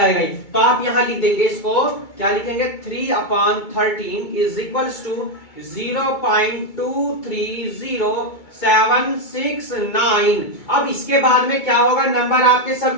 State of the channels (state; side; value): late; right; 2.2 ms